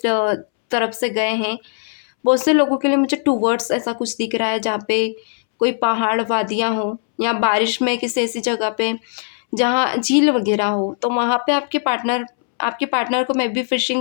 तरफ से गए हैं। बहुत से लोगों के लिए मुझे टूवर्ड्स ऐसा कुछ दिख रहा है, जहाँ पे कोई पहाड़, वादियाँ हों, या बारिश में किसी ऐसी जगह पे जहाँ झील वगैरह हो, तो वहाँ पे आपके पार्टनर को मे बी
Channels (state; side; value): silent; right; 66 dB below the other